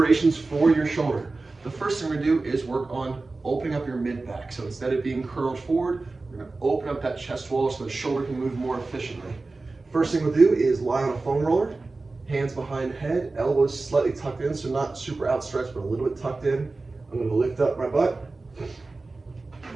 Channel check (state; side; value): quieter; left; 3.5 dB